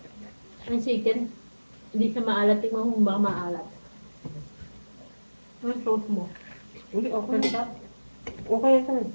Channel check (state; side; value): inverted; both; correlation -1.00